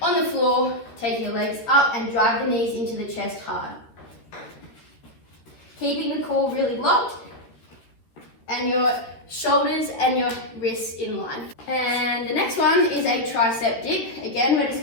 on the floor, take your legs up and drive the knees into the chest hard. Keeping the core really locked and your shoulders and your wrists in line. And the next one is a tricep dip. Again, we're just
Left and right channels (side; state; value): right; late; 13 ms